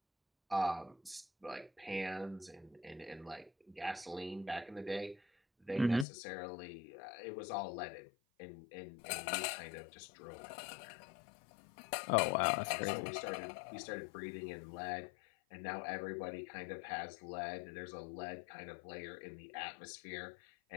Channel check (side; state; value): right; drops out; at 6.1 s